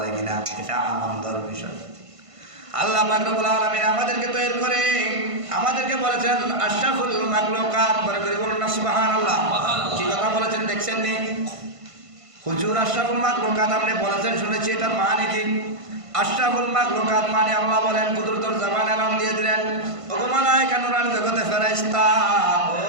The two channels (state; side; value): late; left; 1.5 ms